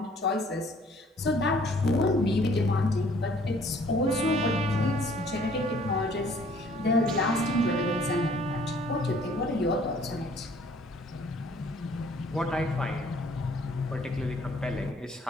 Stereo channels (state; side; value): normal; both; correlation 0.58